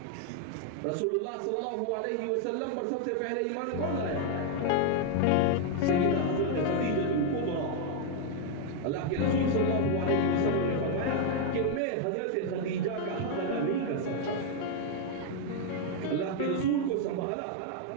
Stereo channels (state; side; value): different; both; correlation 0.00